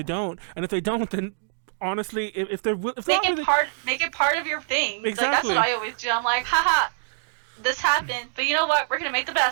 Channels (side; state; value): left; silent; digital silence